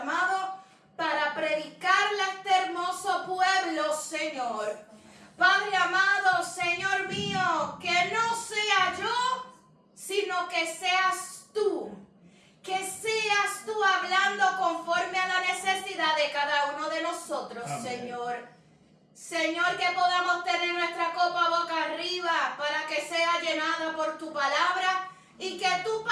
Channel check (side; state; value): both; identical; correlation 1.00